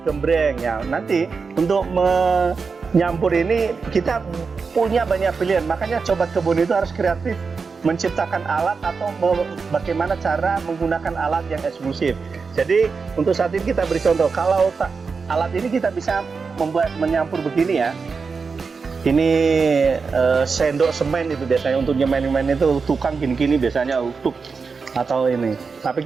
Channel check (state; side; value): quieter; left; 5.0 dB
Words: gembreng ya. Nanti untuk menyampur ini kita punya banyak pilihan. Makanya sobat kebun itu harus kreatif menciptakan alat atau bagaimana cara menggunakan alat yang eksklusif. Jadi untuk saat ini kita beri contoh. Kalau alat ini kita bisa menyampur begini ya. Ini sendok semen itu biasanya untuk nyemen itu, tukang gini-gini biasanya untuk atau ini. Tapi